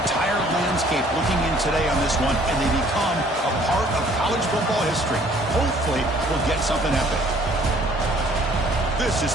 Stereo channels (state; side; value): normal; both; correlation 0.58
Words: landscape looking in today on this one, and they become a part of college football history. Hopefully, we'll get something epic. This is